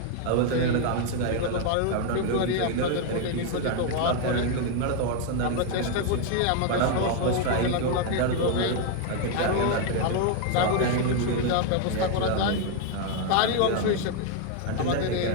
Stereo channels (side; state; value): both; different; correlation 0.00